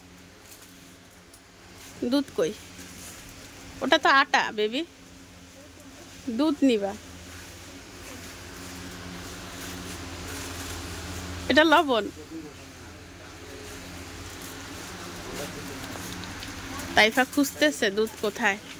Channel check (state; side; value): identical; both; correlation 1.00